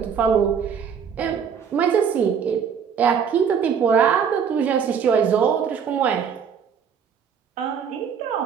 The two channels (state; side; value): quieter; left; 7.1 dB